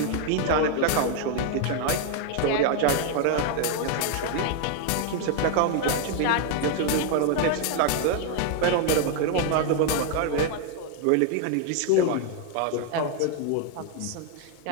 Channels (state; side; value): different; both; correlation 0.00